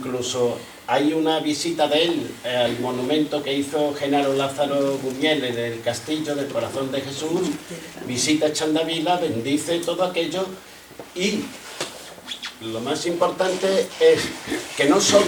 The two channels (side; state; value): both; identical; correlation 1.00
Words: hay una visita de él al monumento que hizo Genaro Lázaro Buñuel en el Castillo del Corazón de Jesús, visita Chandavila, bendice todo aquello, y lo más importante es que no